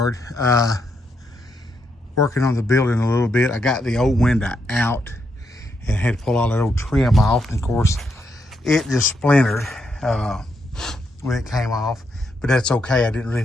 Working on the building a little bit. I got the old window out and had to pull all that old trim off. And of course, it just splintered when it came off, but that's okay. I didn't really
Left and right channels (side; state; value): both; normal; correlation 0.79